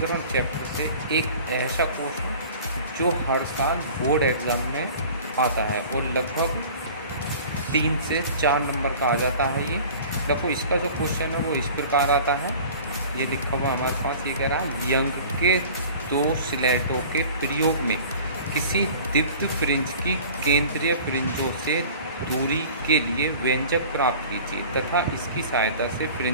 चैप्टर से एक ऐसा क्वेश्चन जो हर साल बोर्ड एग्ज़ाम में आता है और लगभग 3 से 4 नंबर का आ जाता है। ये देखो, इसका जो क्वेश्चन है वो इस प्रकार आता है। ये लिखा हुआ हमारे पास, ये कह रहा है यंग के 2 स्लेटों के प्रयोग में किसी दिव्य फ्रिंज की केंद्रीय फ्रिंजों से दूरी के लिए व्यंजक प्राप्त कीजिए तथा इसकी सहायता से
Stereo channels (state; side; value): inverted; both; correlation -0.43